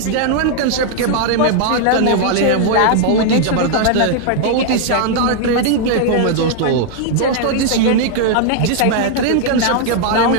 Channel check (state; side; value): different; both; correlation 0.00